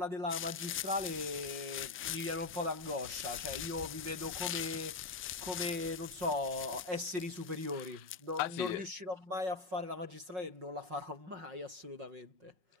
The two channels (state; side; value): quieter; right; 3.8 dB